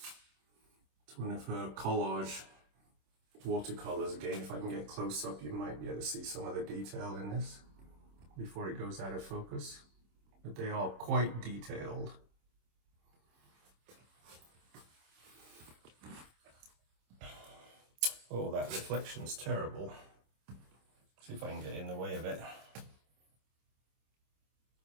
It's one of her collage watercolors. Again, if I can get close up, you might be able to see some of the detail in this before it goes out of focus. But they are quite detailed. Oh, that reflection's terrible. See if I can get in the way of it.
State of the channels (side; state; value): left; late; 26 ms